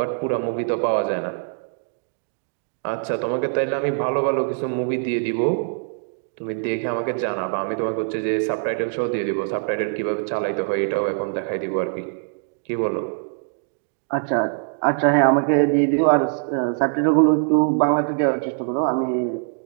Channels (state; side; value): silent; left; digital silence